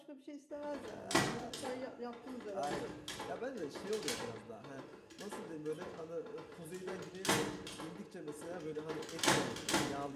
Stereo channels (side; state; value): both; identical; correlation 1.00